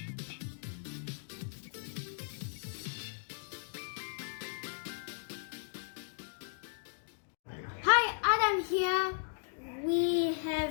Hi, Adam here. We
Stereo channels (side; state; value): right; silent; digital silence